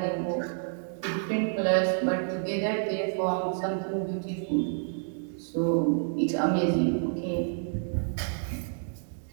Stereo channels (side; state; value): left; silent; digital silence